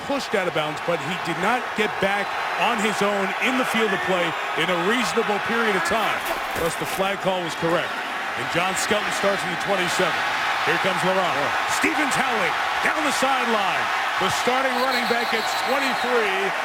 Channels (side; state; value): both; identical; correlation 1.00